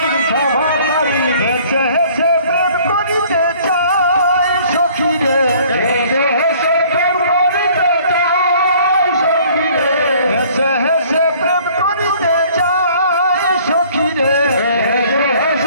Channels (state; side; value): inverted; both; correlation -0.55